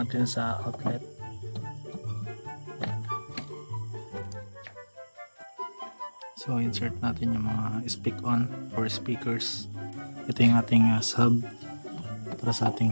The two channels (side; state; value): both; inverted; correlation -1.00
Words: sa outlet. So insert natin yung mga speak on for speakers. Ito yung ating sub para sa ating